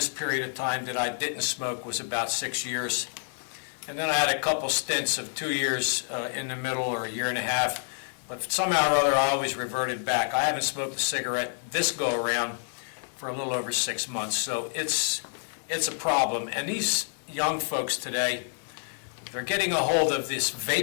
period of time that I didn't smoke was about 6 years. and then I had a couple stints of 2 years in the middle, or a year and a half, but somehow or other I always reverted back. I haven't smoked a cigarette this go-around for a little over 6 months, so it's a problem. And these young folks today, they're getting a hold of this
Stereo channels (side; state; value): right; silent; digital silence